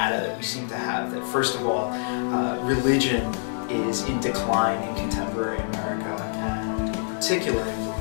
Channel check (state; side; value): silent; right; 56 dB below the other